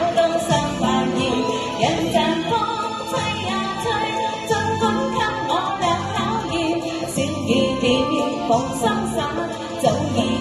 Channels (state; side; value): identical; both; correlation 1.00